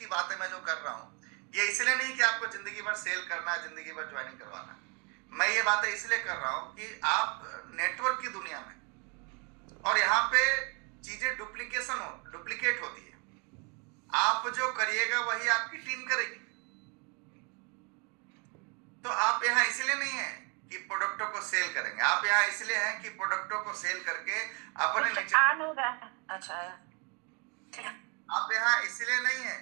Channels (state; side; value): quieter; left; 33.3 dB